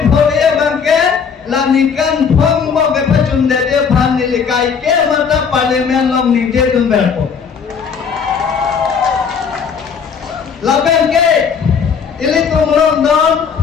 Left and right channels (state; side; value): quieter; right; 6.4 dB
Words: bagai la nikan phong bagai pacun dede pan nili kai ke mata parlimen long nije dun berpo la bagai ili tum long don